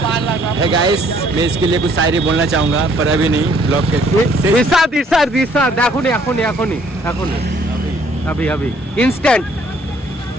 है गाइस, मैं इसके लिए कुछ शायरी बोलना चाहूँगा पर अभी नहीं, ब्लॉग के इरशाद एखुनी अभी इंस्टेंट।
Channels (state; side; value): normal; both; correlation 0.63